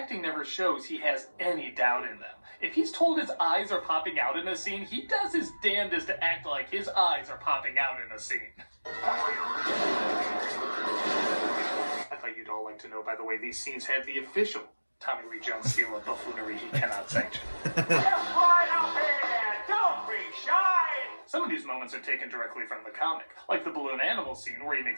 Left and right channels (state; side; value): inverted; both; correlation -1.00